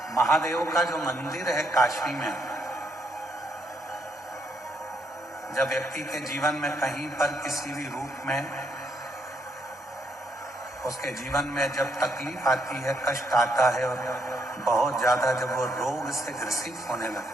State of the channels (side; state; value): both; normal; correlation 0.74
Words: महादेव का जो मंदिर है काशी में, जब व्यक्ति के जीवन में कहीं पर किसी भी रूप में उसके जीवन में जब तकलीफ आती है, कष्ट आता है और बहुत ज्यादा जब वो रोग से ग्रसित होने